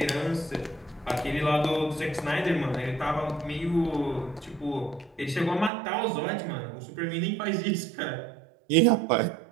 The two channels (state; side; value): drops out; left; at 5.7 s